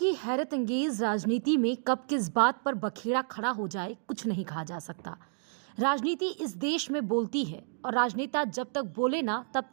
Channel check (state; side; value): silent; left; digital silence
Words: हैरत अंगेज राजनीति में कब किस बात पर बखेड़ा खड़ा हो जाए कुछ नहीं कहा जा सकता। राजनीति इस देश में बोलती है और राजनेता जब तक बोले ना तब